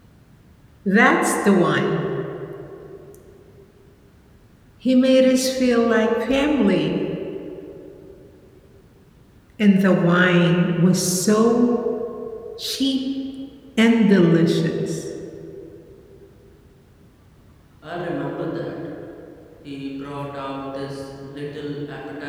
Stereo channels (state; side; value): identical; both; correlation 1.00